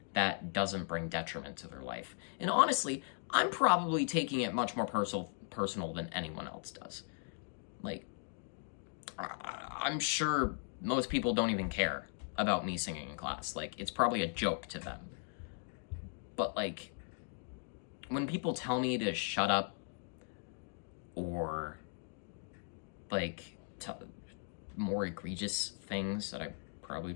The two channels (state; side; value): silent; right; 52 dB below the other